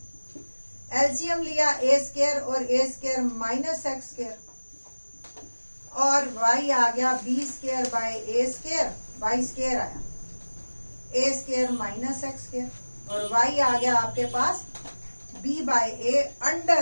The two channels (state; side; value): inverted; both; correlation -1.00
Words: LCM लिया a square और a square minus x square, और y आ गया b square by a square, y square आया a square minus x square, और y आ गया आपके पास b by a